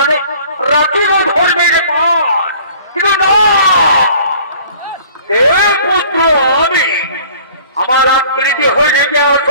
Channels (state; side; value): inverted; both; correlation -0.51